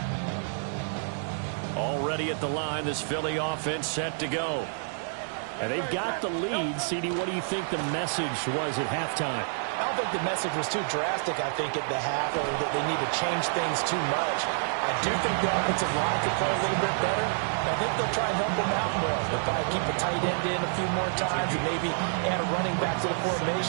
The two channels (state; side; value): silent; left; digital silence